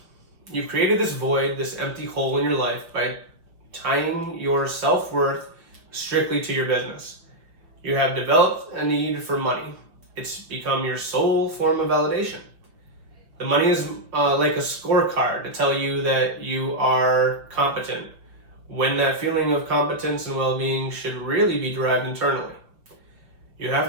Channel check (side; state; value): left; late; 5.8 ms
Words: You've created this void, this empty hole in your life by tying your self-worth strictly to your business. You have developed a need for money. It's become your sole form of validation. The money is like a scorecard to tell you that you are competent, when that feeling of competence and well-being should really be derived internally. You